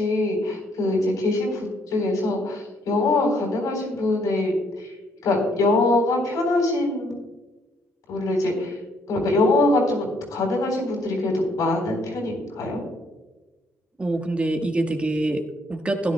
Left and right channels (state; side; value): normal; both; correlation 0.68